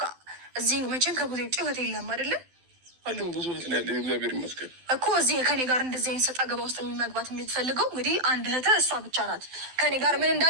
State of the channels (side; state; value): left; late; 12 ms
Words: እዚህ መቼም ከቡዜ ውጭ እህት የለም አይደለ? አለም ብዙ እህት ነው ያለ። እግዚአብሔር ይመስገን እኮ እዚህ ከኔ ጋር እንደዚህ አይነት ሰጣ ገባ ውስጥ መግባት የምትፈልገው እንግዲህ አንድ እህት እሷ ብቻ ናት። ከኔ ጋር ምን